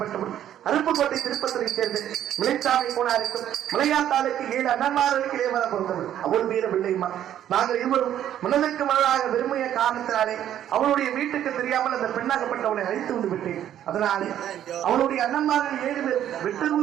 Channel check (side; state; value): left; quieter; 11.0 dB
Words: அருப்புக்கோட்டை திருப்பத்திரை சேர்ந்து மிளைச்சாமி போனாருக்கும் மலையாத்தாளுக்கு 7 அண்ணன்மார்களுக்கு இளையவர பிறந்தவள். அவள் மீது வெள்ளையம்மா. நாங்கள் இருவரும் மனதிற்கு மனதாக விரும்பிய காரணத்தினாலே அவளுடைய வீட்டுக்கு தெரியாமல் அந்த பெண்ணாகப்பட்டவளை அழைத்து வந்து விட்டேன். அதனாலே அவளுடைய அண்ணன்மார்கள் 7 பேர் வெட்டர்வு